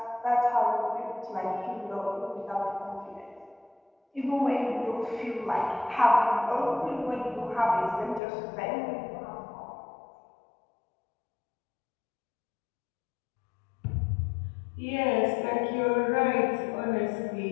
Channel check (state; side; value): drops out; right; at 8.2 s